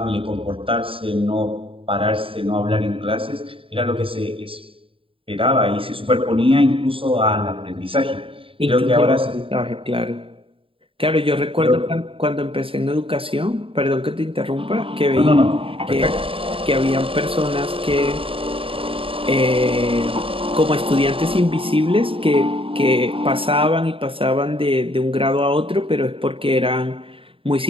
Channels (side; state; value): left; late; 0.26 ms